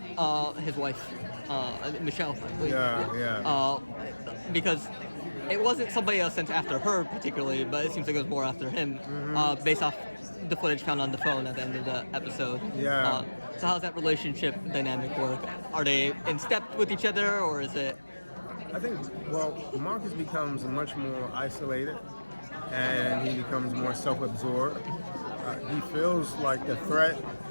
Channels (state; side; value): inverted; both; correlation -1.00